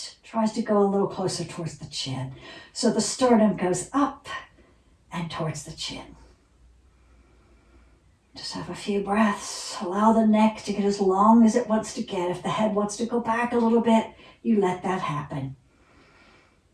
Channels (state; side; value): identical; both; correlation 1.00